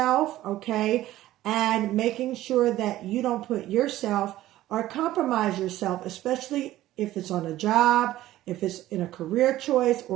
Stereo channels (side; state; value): left; quieter; 14.9 dB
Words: okay, and making sure that you don't put yourself or compromise yourself, especially if it's on a job, if it's in a career choice